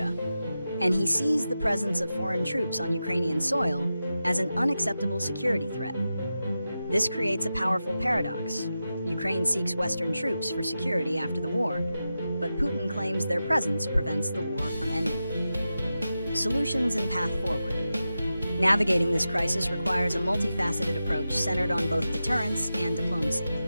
and he sees the presence of foreign troops on Ukrainian soil as an unacceptable security threat. This creates a powerful paradox. Ukraine seeks Western troops for security after the war, but Putin claims their presence prevents the war from ending. Solutions and path forward. Navigating this crisis requires a multifaceted approach centered on both deterrence and diplomacy.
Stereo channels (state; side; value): inverted; both; correlation -0.91